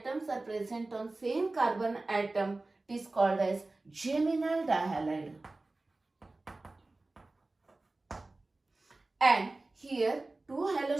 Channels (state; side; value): quieter; left; 3.1 dB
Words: are present on same carbon atom. It is called as geminal dihalide. And here 2